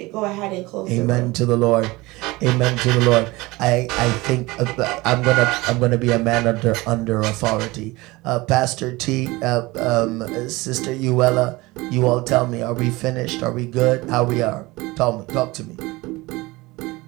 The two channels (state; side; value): quieter; left; 21.7 dB